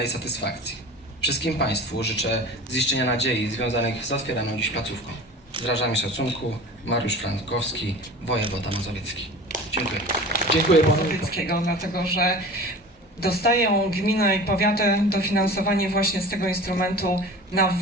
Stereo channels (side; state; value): both; normal; correlation 0.38